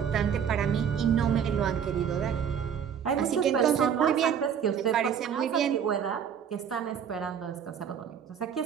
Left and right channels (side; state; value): left; quieter; 8.0 dB